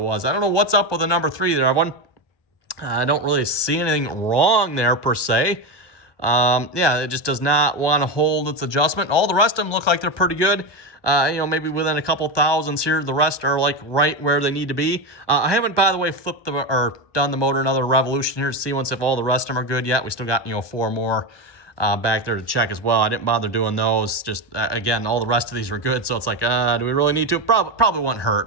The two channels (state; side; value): late; right; 1.2 ms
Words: I don't know what's up with the number 3 there, everyone. I don't really see anything wrong there per se. Yeah, it just does not want to hold its adjustment. All the rest of them look like they're pretty good. Maybe within a couple thousandths here. The rest are like right where they need to be. I haven't, by the way, flipped or done the motor another revolution here to see if all the rest of them are good yet. We still got 4 more back there to check as well. I didn't bother doing those. Just again, all the rest of these were good. So it's like, do we really need to? Probably wouldn't